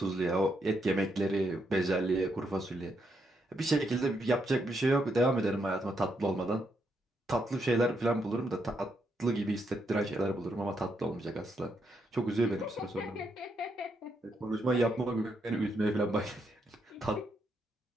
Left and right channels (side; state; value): both; normal; correlation 0.79